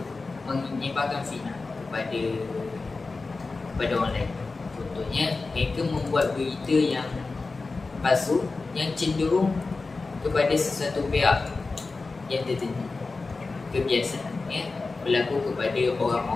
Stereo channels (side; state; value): right; quieter; 3.8 dB